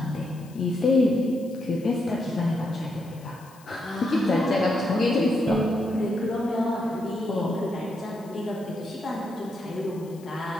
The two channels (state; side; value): noise; left; hiss, 25 dB below the sound